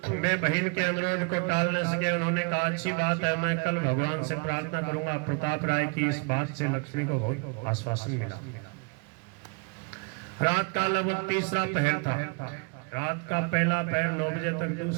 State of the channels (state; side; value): quieter; left; 32.6 dB